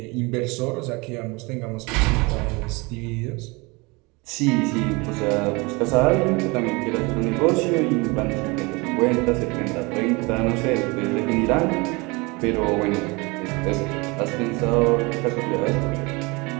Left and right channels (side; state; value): left; quieter; 26.4 dB